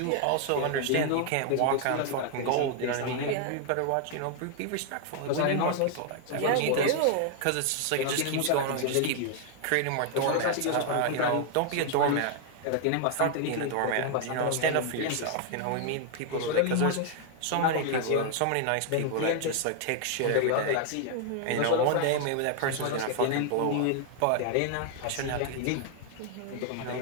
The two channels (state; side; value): different; both; correlation 0.00